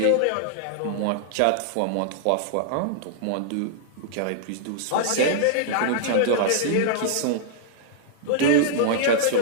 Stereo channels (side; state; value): both; different; correlation -0.01